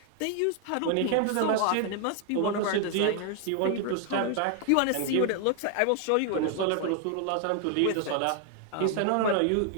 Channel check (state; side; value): different; both; correlation 0.00